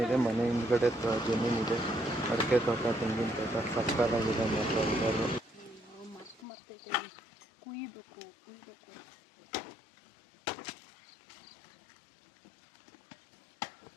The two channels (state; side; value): drops out; right; at 6.5 s